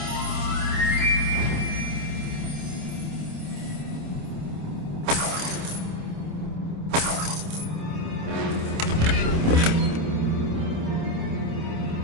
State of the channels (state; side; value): late; left; 27 ms